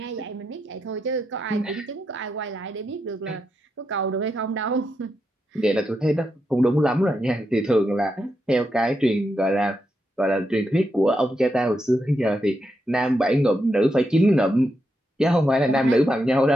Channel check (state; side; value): normal; both; correlation 0.84